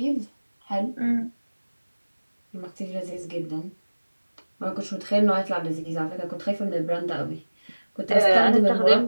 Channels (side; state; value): both; inverted; correlation -1.00